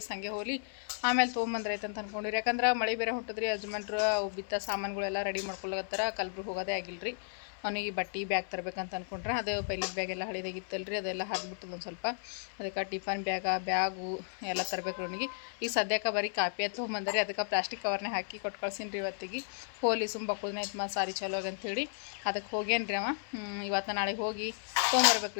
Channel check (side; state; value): right; silent; 55 dB below the other